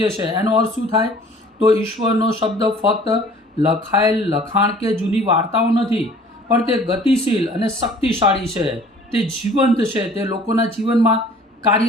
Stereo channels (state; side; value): normal; both; correlation 0.51